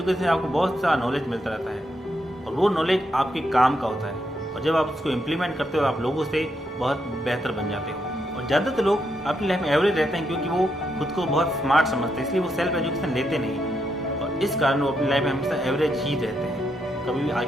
से आपको बहुत सारा नॉलेज मिलता रहता है और वो नॉलेज आपके काम का होता है, और जब आप उसको इम्प्लीमेंट करते हो आप लोगों से बहुत बेहतर बन जाते हो। और ज़्यादातर लोग अपनी लाइफ में एवरेज रहते हैं क्योंकि वो खुद को बहुत स्मार्ट समझते हैं, इसलिए वो सेल्फ एजुकेशन लेते नहीं और इस कारण वो अपनी लाइफ में हमेशा एवरेज ही रहते हैं, कभी भी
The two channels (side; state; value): both; normal; correlation 0.80